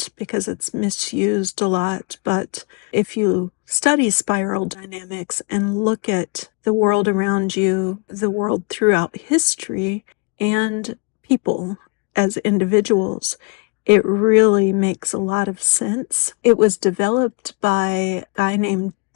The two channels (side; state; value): right; quieter; 32.5 dB